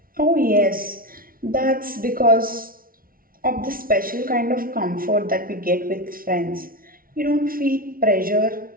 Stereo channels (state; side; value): late; left; 0.42 ms